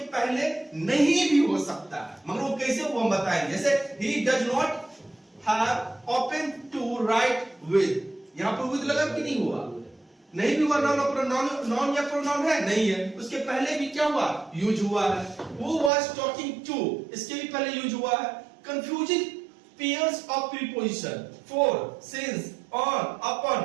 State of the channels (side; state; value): left; drops out; at 15.9 s